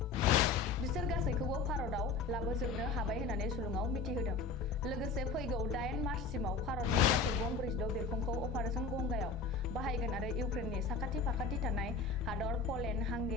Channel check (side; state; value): right; quieter; 4.3 dB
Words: बिसोर गासैखौबो भारतआव लाबोजोबनो हाबाय होननानै सुलुङाव मिथिहोदों। लोगोसे फैगौ 8 मार्चसिमाव भारतनि गासै गं 46 बिरखंखौ अपारेशन गंगायाव बाहायगोन आरो इउक्रेननि साखाथि फाखाथि थानाय हादर पलेन्ड,